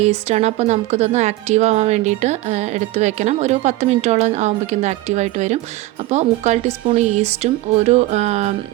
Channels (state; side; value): quieter; left; 17.6 dB